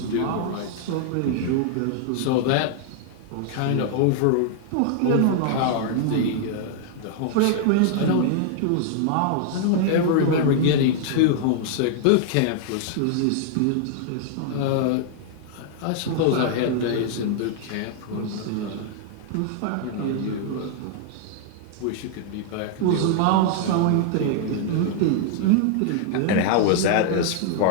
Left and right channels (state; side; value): different; both; correlation -0.01